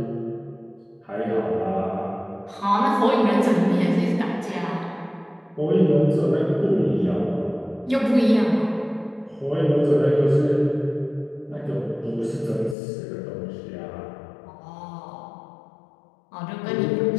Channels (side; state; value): right; drops out; at 12.8 s